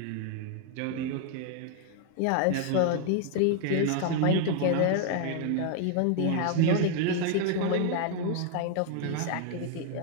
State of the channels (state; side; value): different; both; correlation 0.00